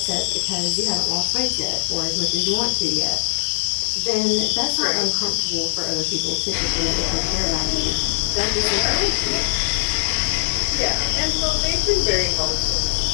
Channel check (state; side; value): silent; right; digital silence